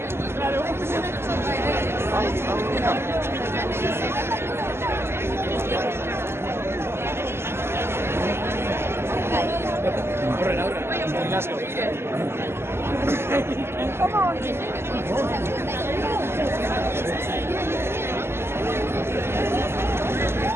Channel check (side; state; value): left; late; 0.12 ms